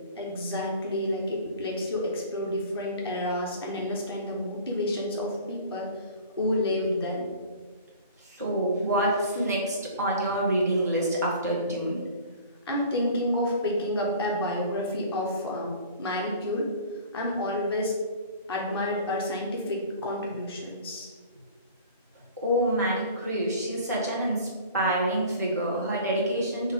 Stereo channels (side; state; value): both; inverted; correlation -0.43